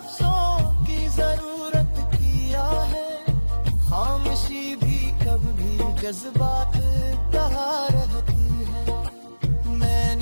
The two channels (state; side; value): inverted; both; correlation -1.00